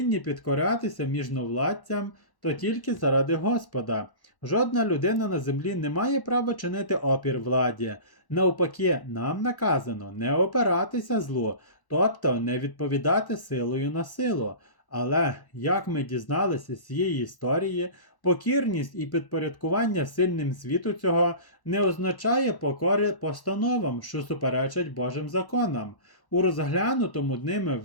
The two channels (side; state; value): right; late; 1.1 ms